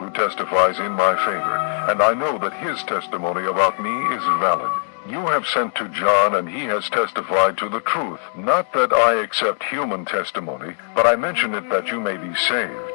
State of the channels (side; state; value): right; silent; digital silence